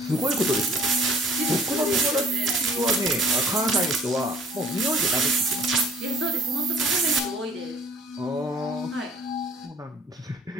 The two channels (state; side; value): normal; both; correlation 0.54